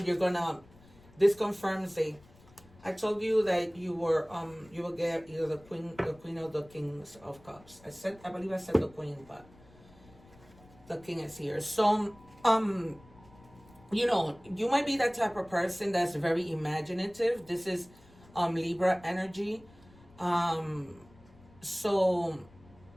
you're gonna, this confirms I told you that you will get either the queen or the Kings of Cups. I believe I said the Queen, but the King is here. So you know, you might be that type of person that's very imaginative. This is Libra energy. So,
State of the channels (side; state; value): left; noise; rumble, 25 dB below the sound